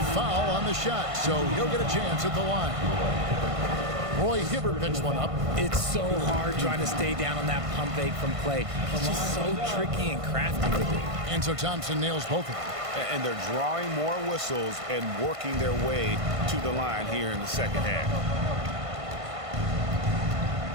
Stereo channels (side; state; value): left; late; 1.5 ms